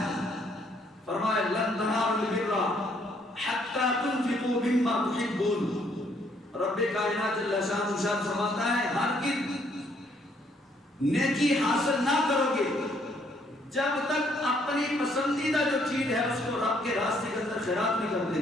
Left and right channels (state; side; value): normal; both; correlation 0.68